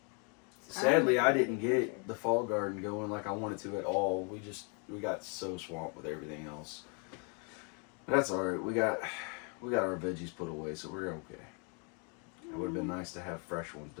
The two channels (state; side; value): quieter; right; 36.7 dB